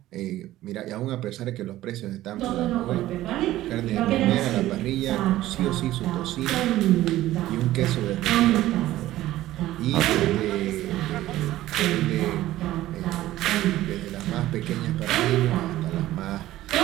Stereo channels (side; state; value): left; quieter; 15.1 dB